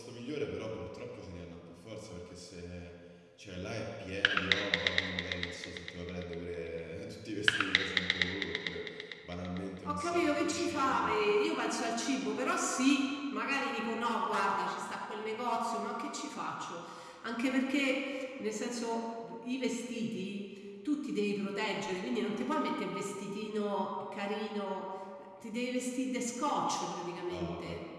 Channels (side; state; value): both; identical; correlation 1.00